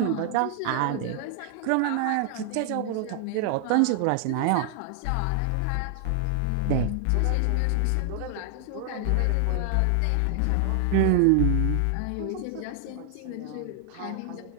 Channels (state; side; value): different; both; correlation -0.01